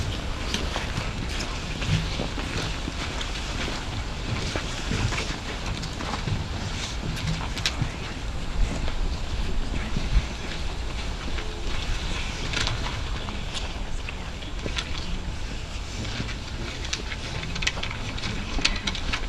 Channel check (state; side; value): identical; both; correlation 1.00